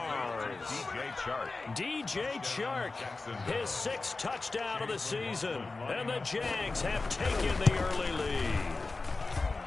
DJ Chark, his 6th touchdown of the season. And the Jags have taken the early lead.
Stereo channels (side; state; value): right; quieter; 3.6 dB